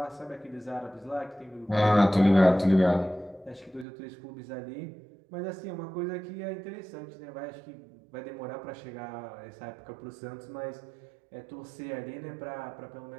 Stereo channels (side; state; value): left; drops out; at 3.9 s